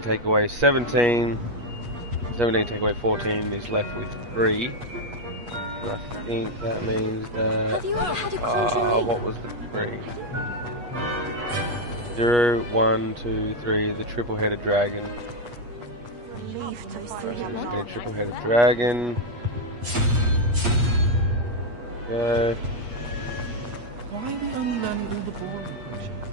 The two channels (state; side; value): late; left; 8.3 ms